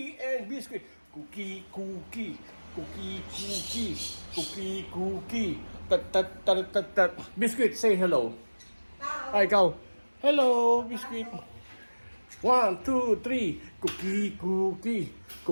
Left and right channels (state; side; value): inverted; both; correlation -1.00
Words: and biscuit. Cookie. Tat. Biscuit, say hello. Ay, ikaw. Hello, biscuit. 1, 2, 3. Cookie.